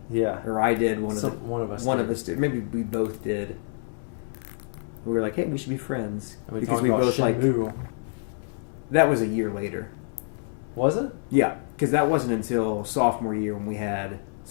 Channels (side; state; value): right; silent; 60 dB below the other